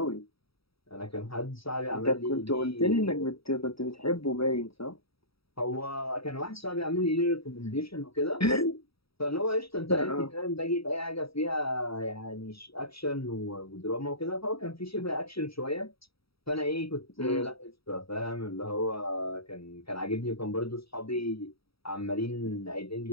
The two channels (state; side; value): late; right; 0.76 ms